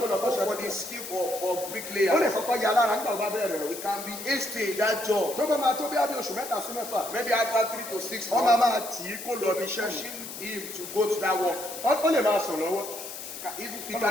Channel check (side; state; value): left; noise; hiss, 10 dB below the sound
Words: lọ you go kọ́ṣẹ́ for the skill for bricklayer, ó lè kọ́kọ́ ya lára nígbà tó bá bẹ̀rẹ̀ rẹ̀. it can be hasty in that job. tó bá máa tó bí abẹ́ oṣù mẹ́ta sí mẹ́fà. Maybe after 3 to 6 wọ́n months, máa tì í kó lọ bí iṣẹ́ yìí. pushing him to go to that work. ó lè máa sùn lọ́wọ́. Even he